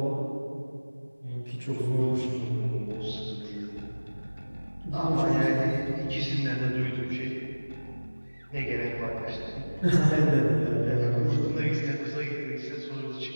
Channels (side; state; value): both; inverted; correlation -1.00